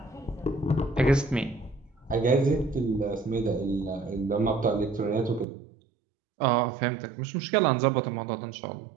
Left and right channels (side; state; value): left; drops out; at 5.5 s